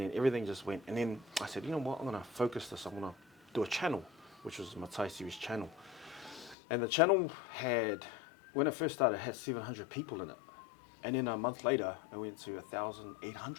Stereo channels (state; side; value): drops out; right; at 6.6 s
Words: everything just went. And then I said, you know what? I'm going to focus this. I'm going to do a channel, which was my Thai series channel. And the channel when it first started, it had 700 people in it. And then a month later, it went to